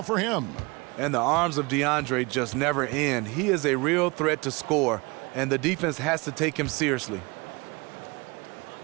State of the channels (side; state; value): left; quieter; 26.4 dB